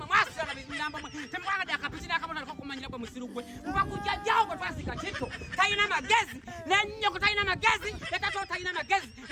mwasira na binyamba mwe. Temwanga akapitira akabona otandika kumanyira kwa musirugwe. Mubakujja jawo kwa twasika kito. Tayina magezi. Nenyo kutayina magezi. Letato tayina magezi.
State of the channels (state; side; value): identical; both; correlation 1.00